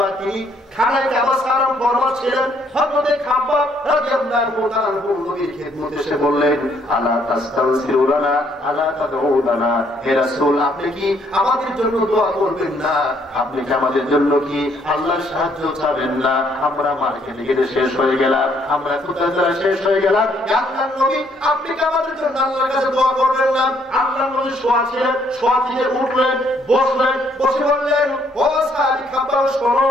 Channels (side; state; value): both; normal; correlation 0.68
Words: তিনি খানায় কাবা সালাম ফরমাস ছিলেন, হযরত খাব্বাব রাদিয়াল্লাহু তাআলা নবীর খেদমতে এসে বললেন, আলা তাস্তাগফিরুনা আলা তাদউনা, হে রাসূল আপনি কি আমাদের জন্য দোয়া করবেন না? আপনি কি আমাদের জন্য কি আল্লাহর সাহায্য চাবেন না? আমরা মার্কেটে গিয়ে শেষ হয়ে গেলাম, আমরা কোথায় শেষ হয়ে গেলাম। আল্লাহর নবী আপনি কি আমাদের জন্য আল্লাহর কাছে দোয়া করবেন না? আল্লাহর নবী শোয়া ছিলেন, শোয়া থেকে উঠলেন, বসলেন, বসে বললেন, ও সাহাবী খাব্বাব শোনো,